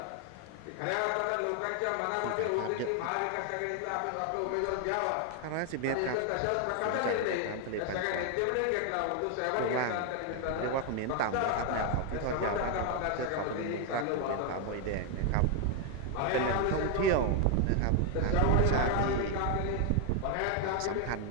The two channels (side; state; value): both; different; correlation 0.01